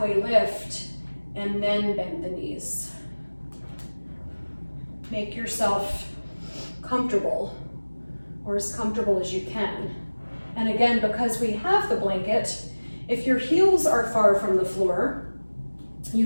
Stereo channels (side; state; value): both; inverted; correlation -1.00